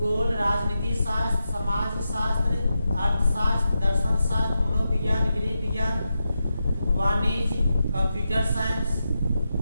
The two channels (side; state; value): both; inverted; correlation -0.88